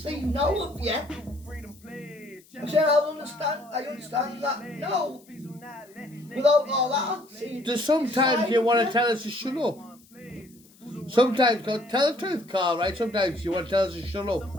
now of you. I said I understand that now. Without all that, see. There's sometimes you want to tell us to shut up. Sometimes, tell the truth, Carl, right? Sometimes you want to tell us to shut up.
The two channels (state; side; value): noise; left; hiss, 28 dB below the sound